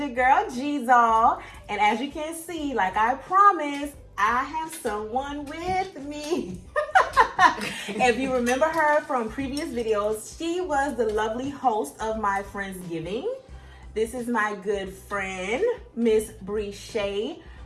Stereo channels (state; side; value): identical; both; correlation 1.00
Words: girl G-Zall, and as you can see, like I promised, I have someone with me. If you remember her from previous videos, she was the lovely host of my Friendsgiving. This is my good friend, Miss Breshay